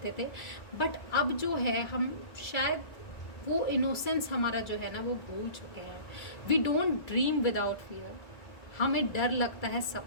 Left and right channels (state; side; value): late; right; 2.3 ms